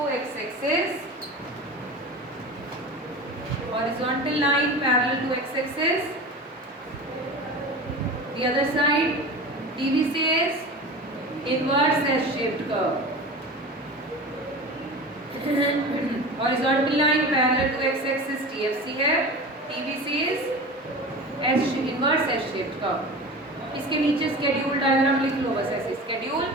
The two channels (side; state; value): both; normal; correlation 0.33